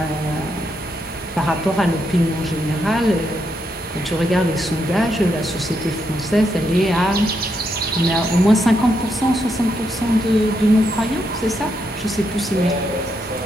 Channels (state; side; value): normal; both; correlation 0.80